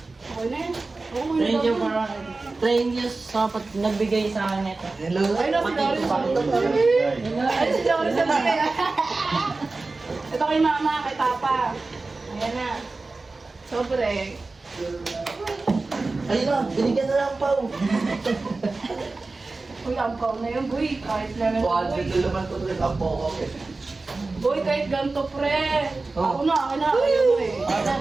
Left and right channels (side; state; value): left; quieter; 3.5 dB